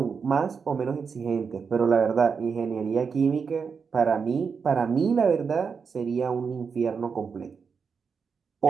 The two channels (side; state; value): left; quieter; 5.8 dB